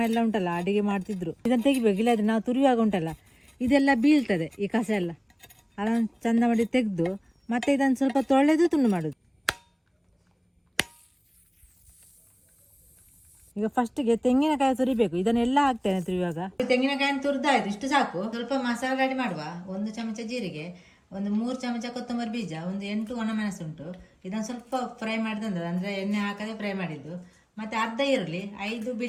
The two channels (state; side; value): identical; both; correlation 1.00